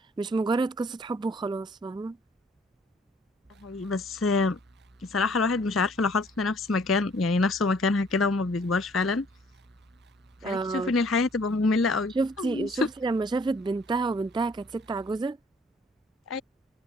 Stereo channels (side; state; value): both; normal; correlation 0.59